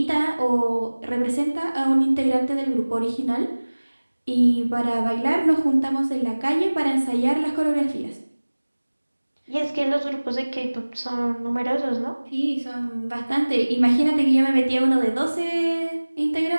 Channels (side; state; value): both; inverted; correlation -1.00